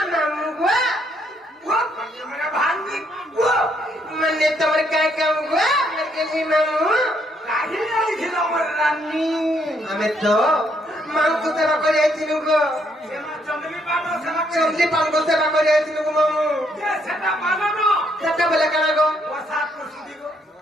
मामुगवा वो मेरा भांगी वो मने तोर काय काम गवा मने मामू काहे नहीं खिलो मर रानी हमें तो मांगतो सेवा करे आइथिनु गो चंदली पान को सेवा करे आइथिनु गो मामू जे सेटा माननो सेटा बोले काना गो प्रसाद प्रसुदी गो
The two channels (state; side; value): normal; both; correlation 0.72